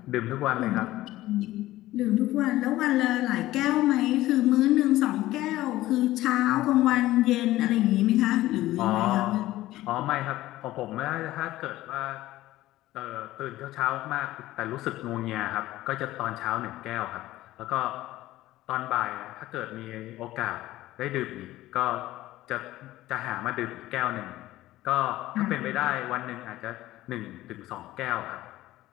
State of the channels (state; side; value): quieter; right; 16.0 dB